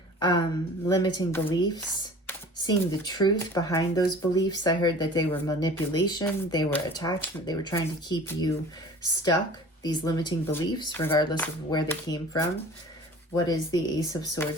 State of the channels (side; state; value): both; normal; correlation 0.43